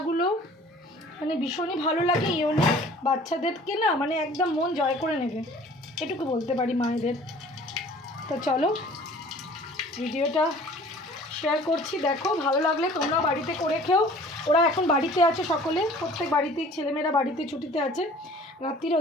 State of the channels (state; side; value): normal; both; correlation 0.49